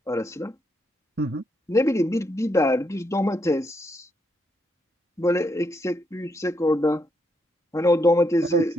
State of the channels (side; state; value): both; normal; correlation 0.78